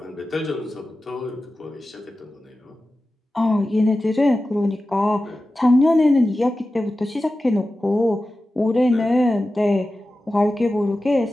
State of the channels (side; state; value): both; normal; correlation 0.94